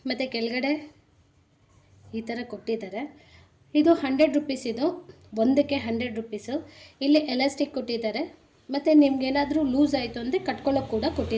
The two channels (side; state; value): both; identical; correlation 1.00